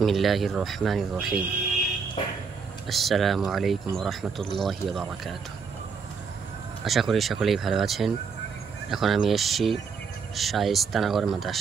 রহমানির রহিম। আসসালামু আলাইকুম রহমতুল্লাহি ওয়া বারাকাতুহু। আশা করি সকলেই ভালো আছেন। এখন আমি এসেছি শায়েস্তানগর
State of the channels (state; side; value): quieter; left; 5.6 dB